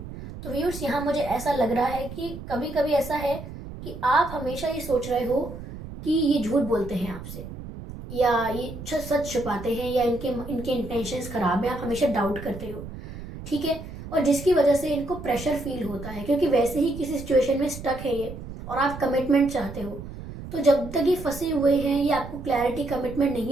तो व्यूअर्स, यहाँ मुझे ऐसा लग रहा है कि कभी कभी ऐसा है कि आप हमेशा ये सोच रहे हो कि ये झूठ बोलते हैं आपसे, या ये सच छुपाते हैं, या इनके इनके इंटेंशंस खराब है, आप हमेशा डाउट करते हो, ठीक है। और जिसकी वजह से इनको प्रेशर फील होता है, क्योंकि वैसे ही किसी सिचुएशन में स्टक है ये, और आप कमिटमेंट चाहते हो। तो जब तक ये फंसे हुए हैं, ये आपको क्लैरिटी, कमिटमेंट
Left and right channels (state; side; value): noise; right; rumble, 11 dB below the sound